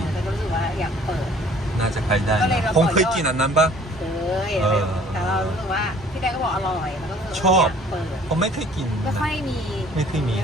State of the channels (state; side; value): normal; both; correlation 0.54